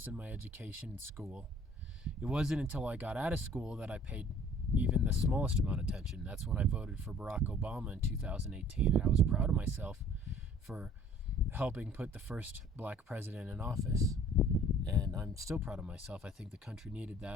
in my education in school. It wasn't until I got out of school that I paid even the smallest amount of attention. That's when I voted for Barack Obama in 2018, and I was proud of myself for helping put the first black president in office. And I'm still proud of myself. I think the country needed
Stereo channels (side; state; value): both; normal; correlation 0.52